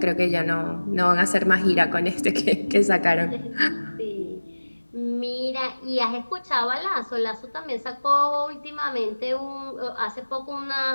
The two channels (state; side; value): inverted; both; correlation -1.00